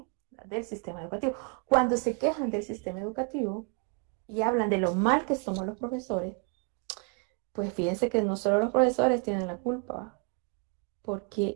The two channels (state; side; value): quieter; left; 36.3 dB